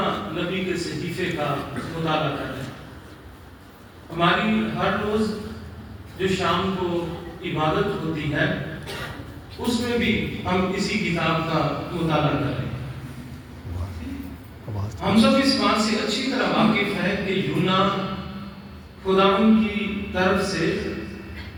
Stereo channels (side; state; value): both; identical; correlation 1.00